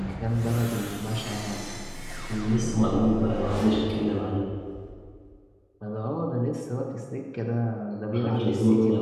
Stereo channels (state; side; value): identical; both; correlation 1.00